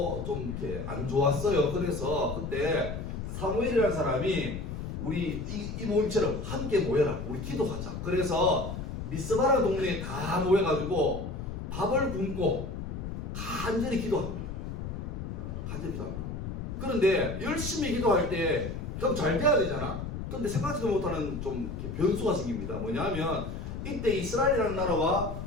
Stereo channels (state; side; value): noise; left; rumble, 6 dB below the sound